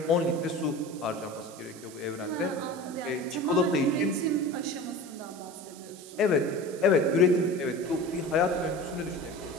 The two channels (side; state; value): right; noise; hiss, 19 dB below the sound